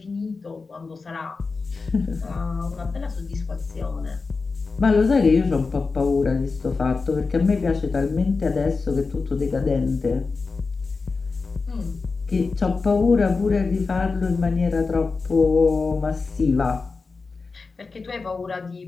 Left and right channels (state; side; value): quieter; right; 4.3 dB